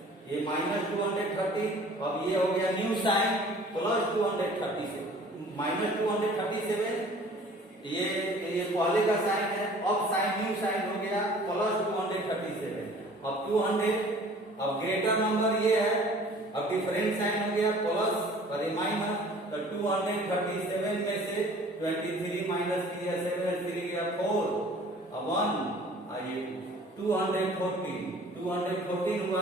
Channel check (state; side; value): normal; both; correlation 0.50